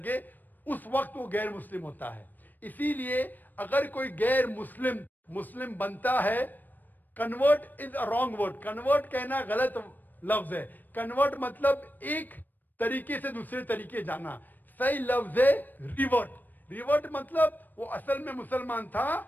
اس وقت وہ غیر مسلم ہوتا ہے۔ اسی لیے اگر کوئی غیر مسلم بنتا ہے، convert is a wrong word, convert کہنا غلط لفظ ہے۔ کنورٹ مطلب ایک طریقے سے دوسرے طریقے جانا، صحیح لفظ ہے ریورٹ۔ ریورٹ مطلب وہ اصل میں مسلمان تھا،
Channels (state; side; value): late; right; 0.089 ms